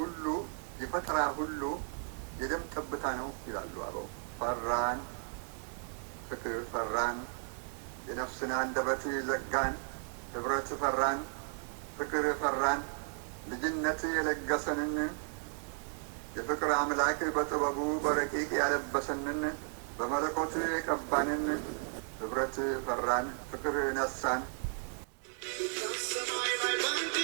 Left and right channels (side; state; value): left; silent; 55 dB below the other